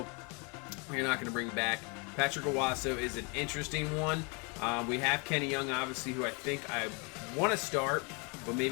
we're not going to bring back. Patrick Owasso is an interesting one. We have Kenny Young, obviously, who I think I want to start, but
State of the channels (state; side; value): quieter; right; 32.7 dB